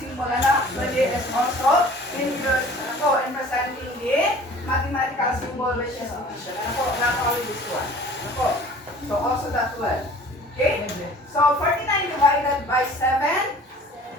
symbol na actually is also in presenting the mathematical symbol which is division. Ano po? Not only this one. Ano po? So also that one. Okay? So 49 divided by 7,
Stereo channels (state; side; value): normal; both; correlation 0.47